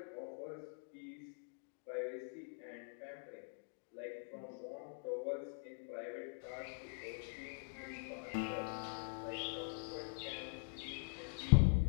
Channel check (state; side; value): silent; right; digital silence